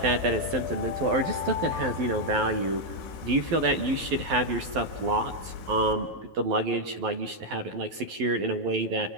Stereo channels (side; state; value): left; late; 12 ms